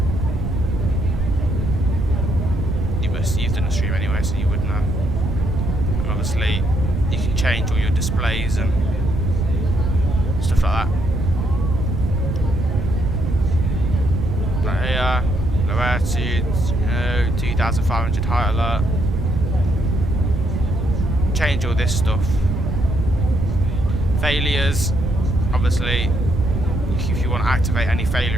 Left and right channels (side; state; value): right; noise; rumble, 3 dB below the sound